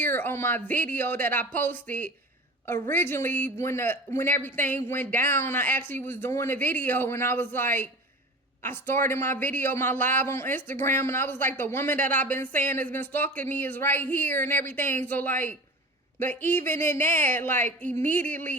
on my video that I posted originally when everything went down. I actually was doing a video, and I was like, I started my video, my live on Instagram, and I was like, the woman that I've been saying has been stalking me is right here and everything. So, like, but even in that, like,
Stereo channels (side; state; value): both; normal; correlation 0.34